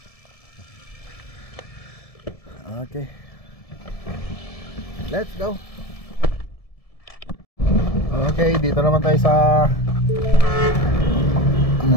Okay. Let's go. Okay, dito naman tayo sa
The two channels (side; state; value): right; late; 1.7 ms